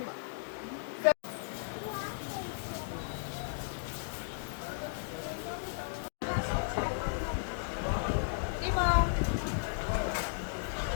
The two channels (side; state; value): right; silent; digital silence